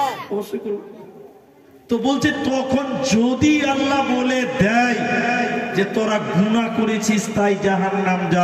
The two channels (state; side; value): identical; both; correlation 1.00